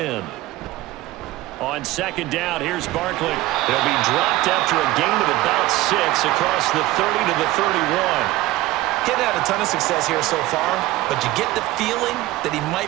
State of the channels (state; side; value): quieter; left; 17.2 dB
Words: On second down, here's Barkley. He'll be dropped after a gain of about 6 across the 30 to the 31. He's had a ton of success here so far, but you get the feeling that he